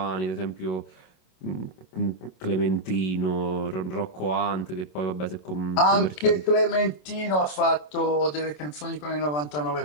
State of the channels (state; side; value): late; right; 27 ms